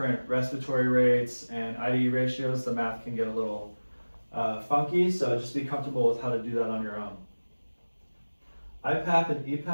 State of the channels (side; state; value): both; inverted; correlation -1.00